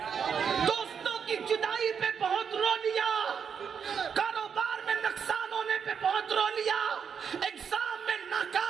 دوستوں کی جدائی پہ بہت رو لیا, کاروبار میں نقصان ہونے پہ بہت رو لیا, ایگزام میں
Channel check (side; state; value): left; quieter; 6.9 dB